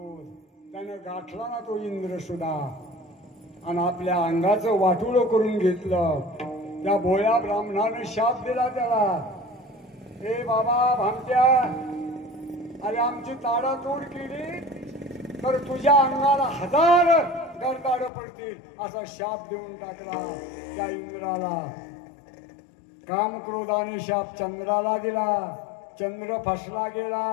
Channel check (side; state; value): right; drops out; at 18.1 s